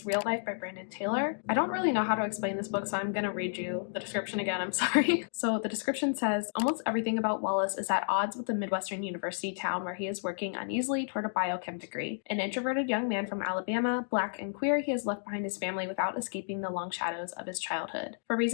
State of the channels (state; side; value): silent; right; digital silence